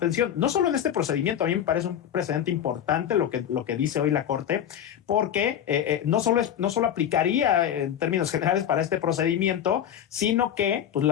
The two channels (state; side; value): quieter; right; 9.7 dB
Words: no solo en este procedimiento, a mí me parece un precedente importante lo que dice hoy la Corte, porque no solo aplicaría en términos generales para este procedimiento, sino que pues,